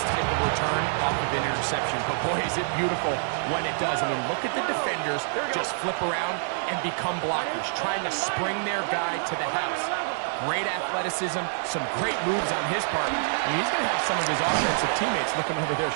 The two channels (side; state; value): left; silent; 60 dB below the other